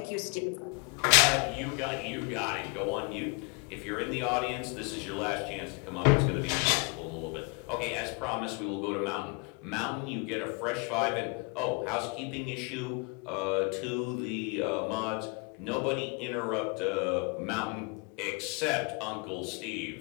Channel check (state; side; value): quieter; right; 32.7 dB